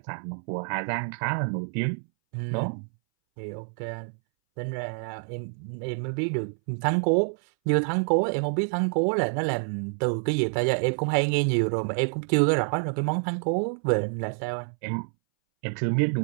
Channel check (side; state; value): left; silent; 60 dB below the other